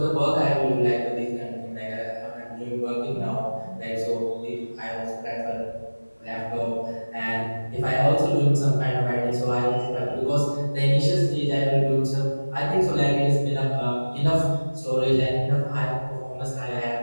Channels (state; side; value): inverted; both; correlation -1.00